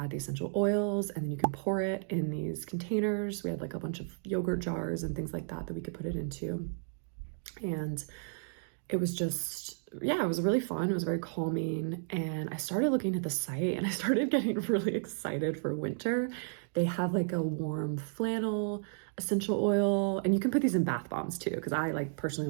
the essential oils, and then you can pour it in these containers. We had like a bunch of yogurt jars and things like that we could put it into. And it was just, yeah, it was really fun. It was very calming. And I started looking at the site and I started getting really excited for winter. They have like a warm flannel essential oil, and you can put these in bath bombs too, because I like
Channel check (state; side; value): silent; left; digital silence